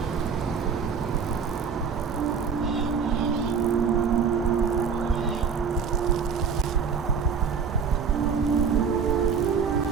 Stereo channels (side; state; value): left; quieter; 6.2 dB